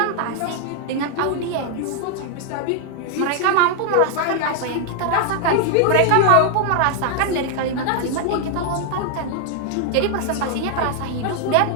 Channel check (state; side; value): different; both; correlation 0.00